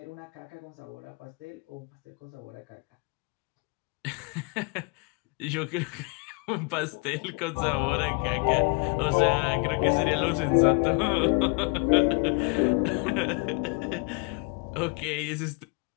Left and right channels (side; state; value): right; quieter; 33.7 dB